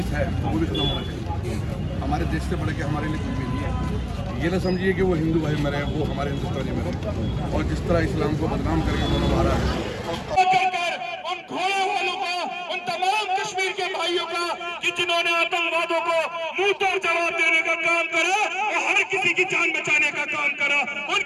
है तो वो भी खत्म होना चाहिए। हमारे देश से बढ़ के हमारे लिए कुछ भी नहीं है। ये ना समझिए कि वो हिंदू भाई मरे, वो हमारे हिंदुस्तानी मरे। और जिस तरह इस्लाम को बदनाम करके उन्होंने मारा है, उन घोड़े वालों का, उन तमाम कश्मीर के भाइयों का कि जिन्होंने आतंकवादों को मुंह तोड़ जवाब देने का काम करा और हर किसी की जान बचाने का काम करा,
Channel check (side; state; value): both; identical; correlation 1.00